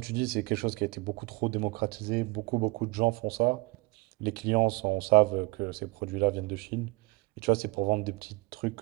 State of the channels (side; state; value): left; quieter; 24.7 dB